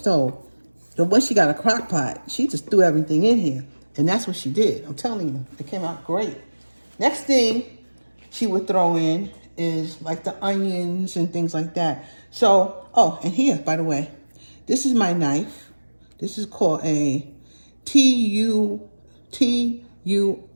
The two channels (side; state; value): both; inverted; correlation -1.00